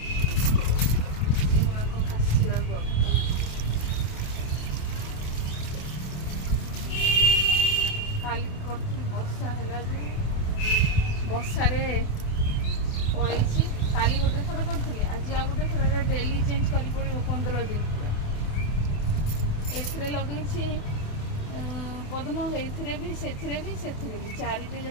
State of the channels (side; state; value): right; late; 28 ms